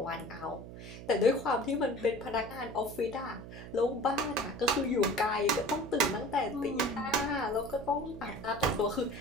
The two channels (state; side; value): noise; right; hum, 13 dB below the sound